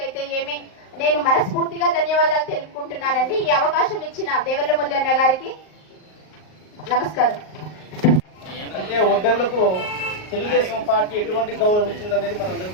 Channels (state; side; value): late; right; 38 ms